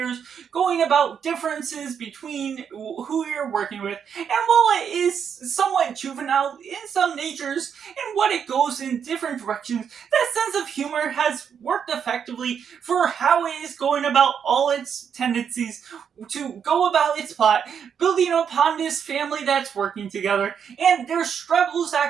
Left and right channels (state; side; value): quieter; left; 7.5 dB